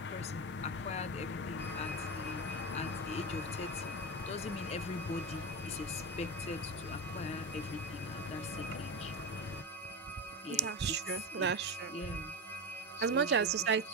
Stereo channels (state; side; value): normal; both; correlation 0.19